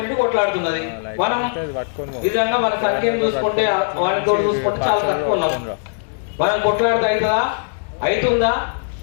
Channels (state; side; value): silent; right; digital silence